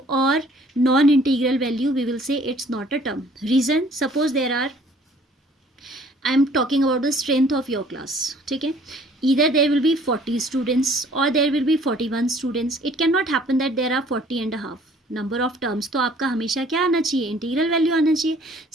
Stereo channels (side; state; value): both; normal; correlation 0.56